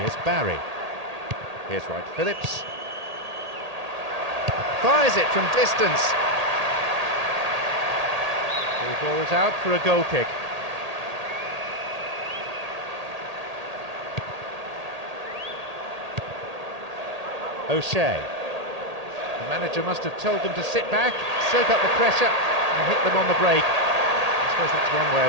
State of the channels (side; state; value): left; late; 1.8 ms